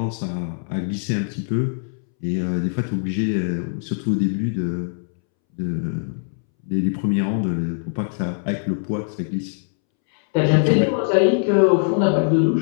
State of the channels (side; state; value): right; silent; 64 dB below the other